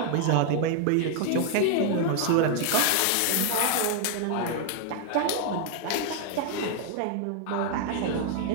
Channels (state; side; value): different; both; correlation 0.00